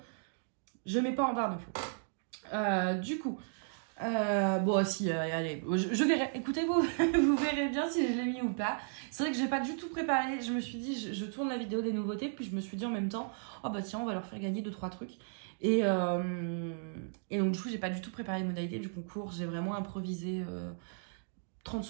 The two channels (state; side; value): silent; left; digital silence